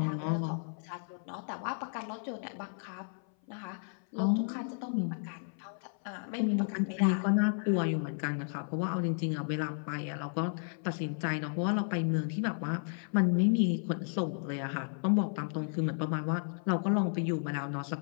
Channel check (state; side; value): silent; right; 56 dB below the other